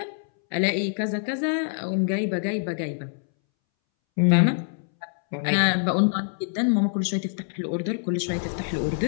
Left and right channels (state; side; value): silent; right; 62 dB below the other